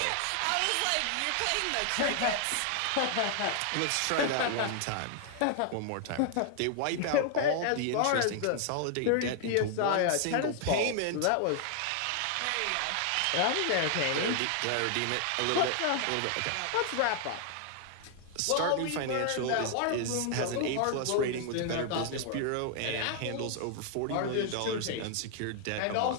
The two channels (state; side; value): different; both; correlation 0.00